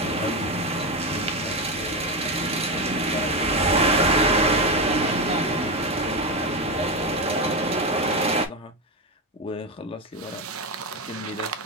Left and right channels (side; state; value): both; normal; correlation 0.12